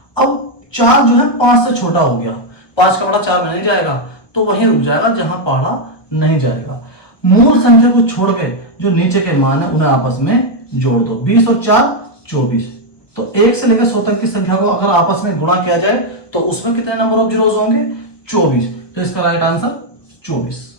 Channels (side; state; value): right; late; 1.2 ms